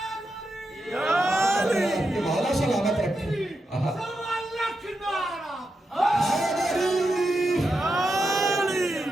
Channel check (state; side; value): normal; both; correlation 0.87